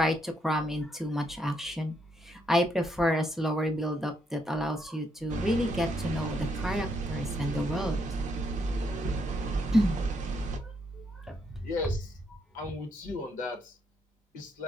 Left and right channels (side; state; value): both; normal; correlation 0.76